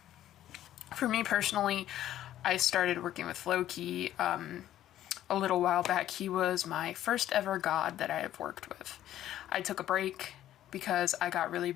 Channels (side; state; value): right; quieter; 12.5 dB